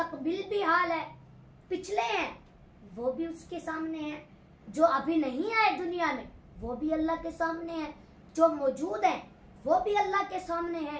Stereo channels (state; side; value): identical; both; correlation 1.00